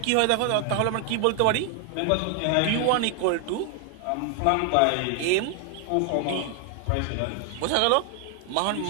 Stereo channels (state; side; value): different; both; correlation 0.00